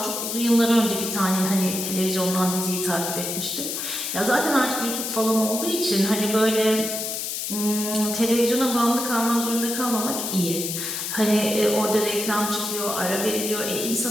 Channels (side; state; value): left; noise; hiss, 4 dB below the sound